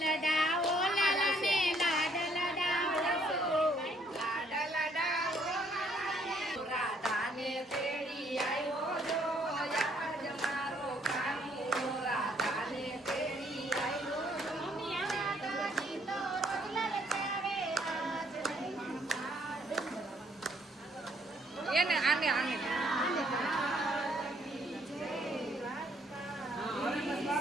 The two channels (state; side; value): normal; both; correlation 0.66